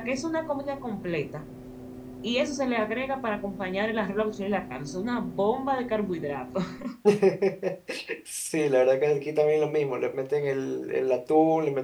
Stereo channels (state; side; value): identical; both; correlation 1.00